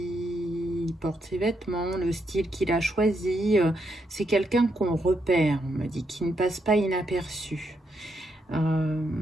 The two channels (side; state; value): both; normal; correlation 0.79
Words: porte ses vêtements, le style qu'il a choisi. C'est quelqu'un qu'on repère, on me dit, qui ne passe pas inaperçu.